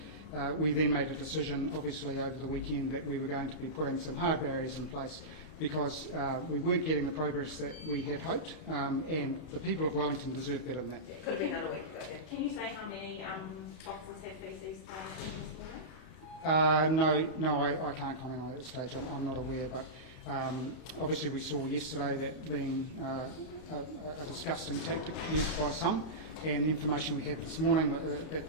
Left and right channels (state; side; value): late; right; 32 ms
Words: we then made a decision, obviously, over the weekend that we were going to be putting some hard barriers in place because we weren't getting the progress that we had hoped, and the people of Wellington deserve better than that. It could have been done a week ago. Can you say how many officers had feces thrown at them this morning? No, I can't comment on it at this stage. I'm not aware, but obviously we saw yesterday that being a disgusting tactic used by some, and the information we had this morning